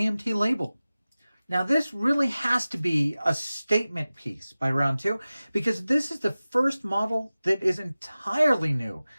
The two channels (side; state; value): both; inverted; correlation -0.97